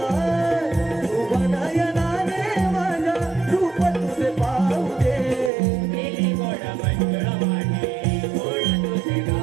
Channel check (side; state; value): left; drops out; at 5.5 s